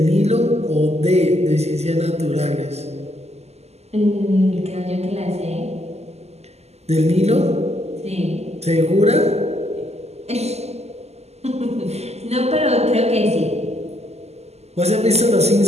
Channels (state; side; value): late; left; 0.30 ms